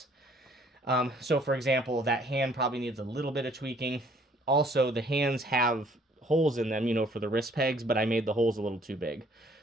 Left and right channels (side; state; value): both; normal; correlation 0.60